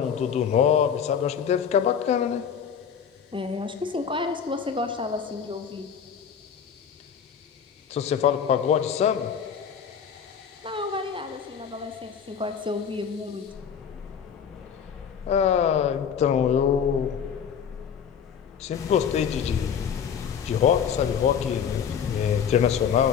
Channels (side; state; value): right; quieter; 7.6 dB